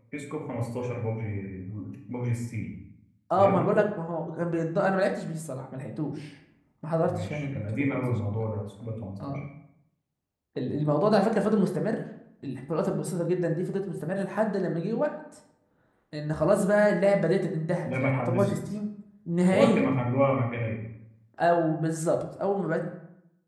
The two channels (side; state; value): both; identical; correlation 1.00